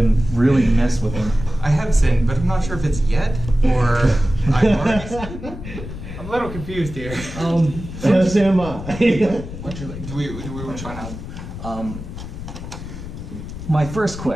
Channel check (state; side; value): noise; left; rumble, 10 dB below the sound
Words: really mess with him. I have sinned, but I'm not sure if it's yet or I've already sinned. I'm a little confused here. Yes, am I? What's your like? Do we want to find out? My first